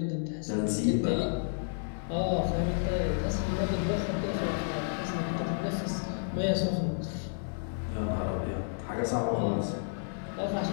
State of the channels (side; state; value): right; silent; digital silence